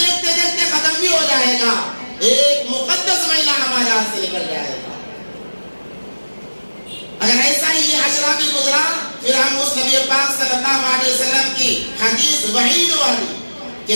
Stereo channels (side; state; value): both; inverted; correlation -1.00